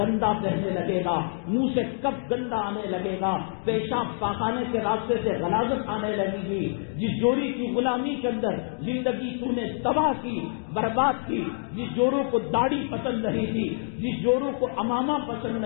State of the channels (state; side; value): silent; right; digital silence